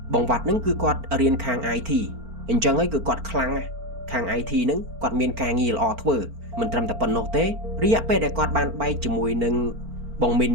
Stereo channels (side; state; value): left; late; 4.4 ms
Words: បងវត្តហ្នឹងគឺគាត់រៀនខាង IT អញ្ចឹងហើយគឺគាត់ខ្លាំងណាស់ខាង IT ហ្នឹងគាត់មានការងារល្អធ្វើមិនត្រឹមតែប៉ុណ្ណោះទេរយៈពេលដែលគាត់បានបែកជាមួយនឹងបងមីនហ